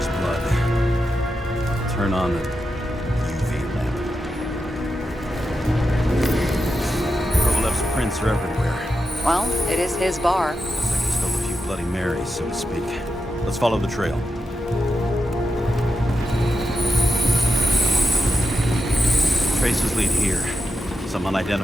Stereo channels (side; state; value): both; normal; correlation 0.88